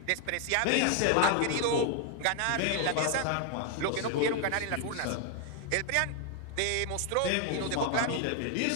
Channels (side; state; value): both; different; correlation 0.00